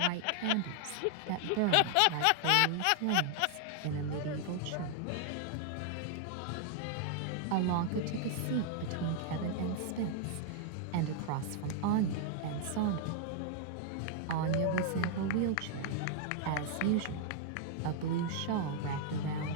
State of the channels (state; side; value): different; both; correlation 0.00